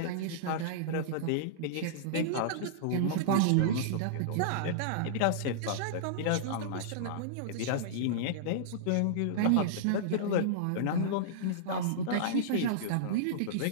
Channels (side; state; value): both; different; correlation -0.02